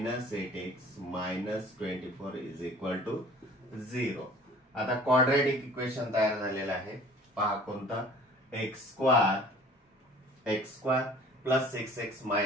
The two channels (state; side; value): normal; both; correlation 0.48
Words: 8x minus 24 is equal to 0. आता क्वाड्रॅटिक इक्वेशन तयार झालेलं आहे. पहा कोणता, x square plus 6x